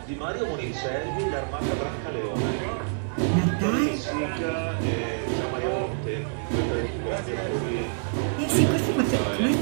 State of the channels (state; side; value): silent; left; digital silence